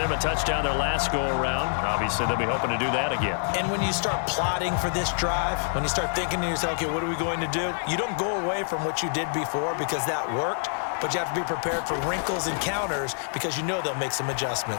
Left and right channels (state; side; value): silent; right; digital silence